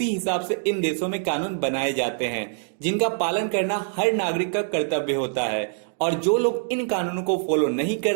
हिसाब से इन देशों में कानून बनाए जाते हैं जिनका पालन करना हर नागरिक का कर्तव्य होता है। और जो लोग इन कानूनों को फॉलो नहीं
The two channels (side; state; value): left; silent; digital silence